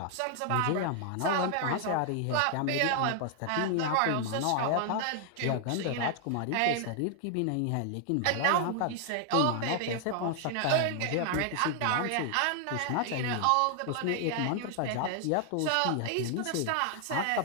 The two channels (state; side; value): different; both; correlation 0.00